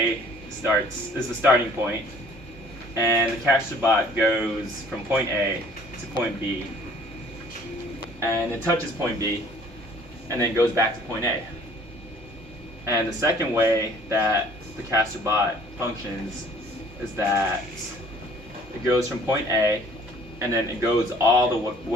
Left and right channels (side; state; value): both; normal; correlation 0.54